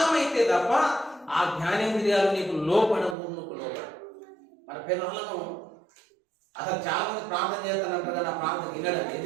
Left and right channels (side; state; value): left; drops out; at 3.2 s